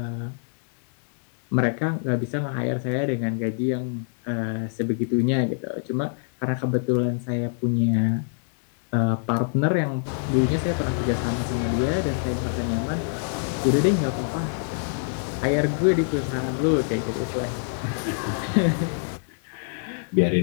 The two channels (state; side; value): silent; right; digital silence